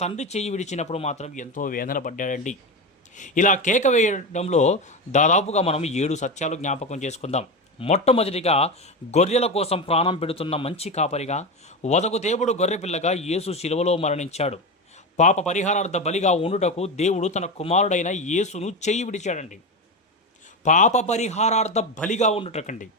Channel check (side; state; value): both; normal; correlation 0.18